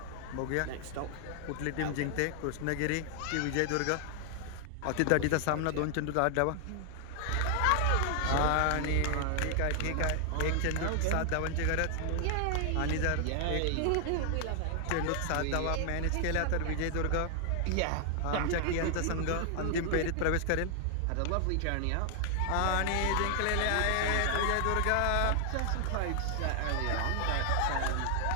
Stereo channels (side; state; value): both; different; correlation 0.00